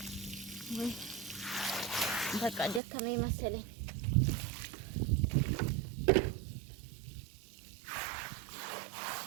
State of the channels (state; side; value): drops out; left; at 2.8 s